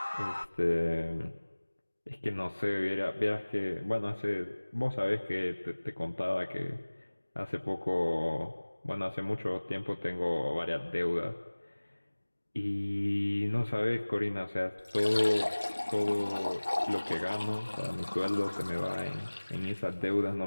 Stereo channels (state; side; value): inverted; both; correlation -1.00